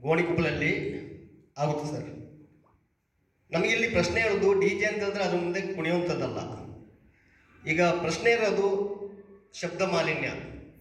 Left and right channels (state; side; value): identical; both; correlation 1.00